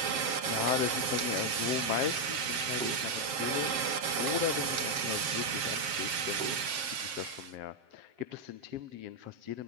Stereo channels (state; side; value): late; left; 7.5 ms